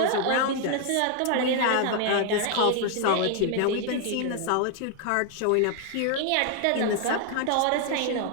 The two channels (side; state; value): both; different; correlation 0.00